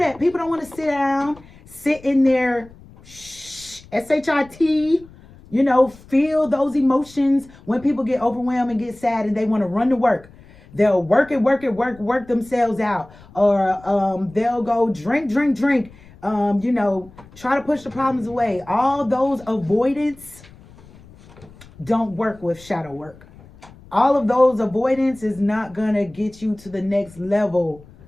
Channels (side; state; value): left; noise; rumble, 23 dB below the sound